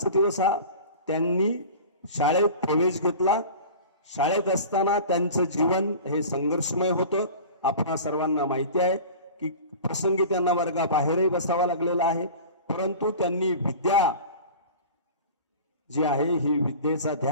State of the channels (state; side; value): inverted; both; correlation -0.38